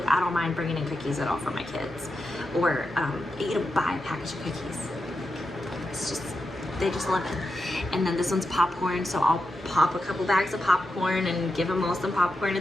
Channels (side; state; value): both; normal; correlation 0.88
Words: I don't mind bringing in cookies at all for my kids, or buy a package of cookies. It's just, they just love it. And then this one's popcorn, so I'll pop a couple bags of popcorn and give them all some popcorn